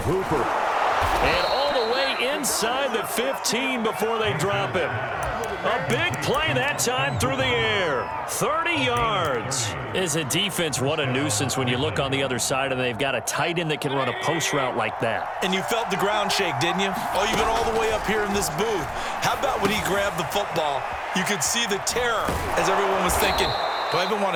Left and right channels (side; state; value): both; identical; correlation 1.00